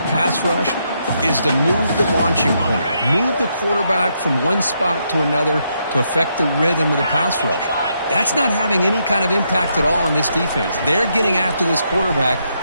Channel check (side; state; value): both; inverted; correlation -0.78